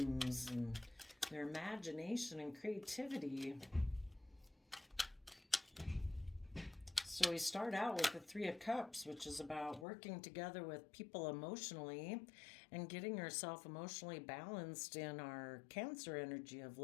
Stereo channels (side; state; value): right; drops out; at 9.9 s